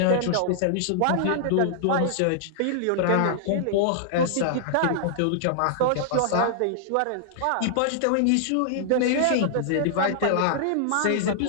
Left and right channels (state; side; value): different; both; correlation -0.01